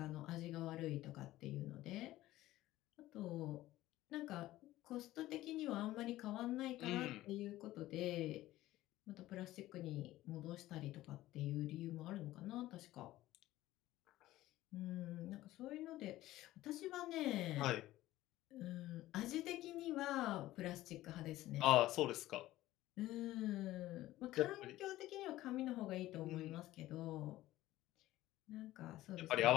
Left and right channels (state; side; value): quieter; right; 15.8 dB